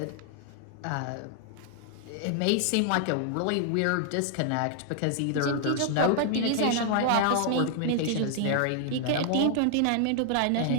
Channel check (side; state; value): both; different; correlation 0.00